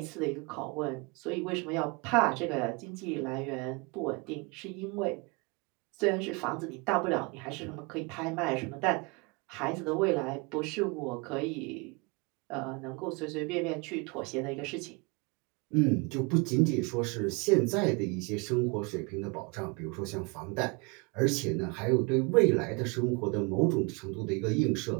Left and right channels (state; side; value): quieter; left; 29.4 dB